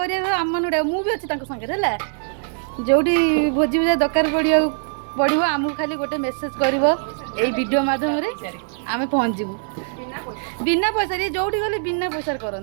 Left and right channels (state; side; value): silent; left; digital silence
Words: मुझे अच्छी संगे है जोटी भोजी भूजा दरकार पड़ो आमको खाली गोटे मेसेज कर वीडियो मध्यम आम पहुँचू बिना पैसा जोटी गले बिना पैसा